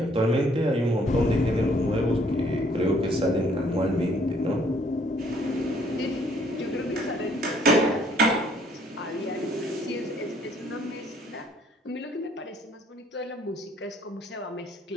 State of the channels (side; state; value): both; normal; correlation 0.63